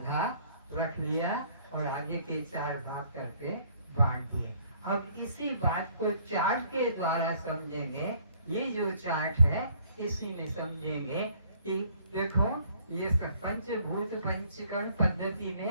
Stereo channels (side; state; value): both; inverted; correlation -0.61